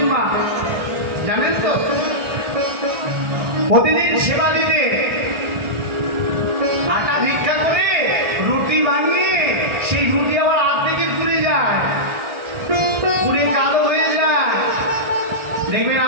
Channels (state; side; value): late; left; 1.4 ms